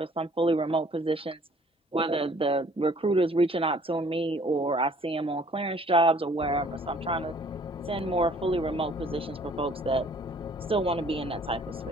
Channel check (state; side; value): normal; both; correlation 0.57